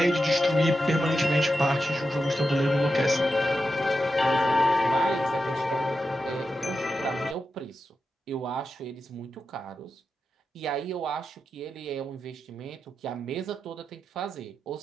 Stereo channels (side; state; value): both; normal; correlation 0.89